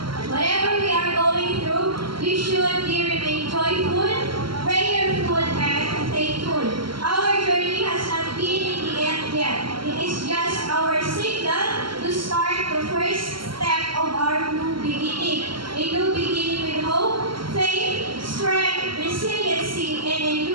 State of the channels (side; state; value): left; late; 0.74 ms